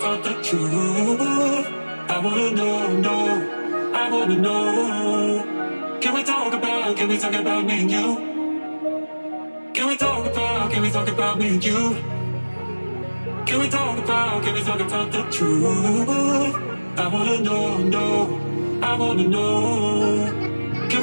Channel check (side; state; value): both; inverted; correlation -1.00